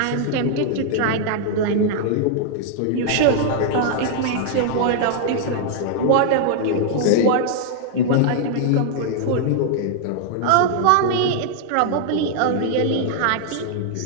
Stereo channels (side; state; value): both; different; correlation -0.01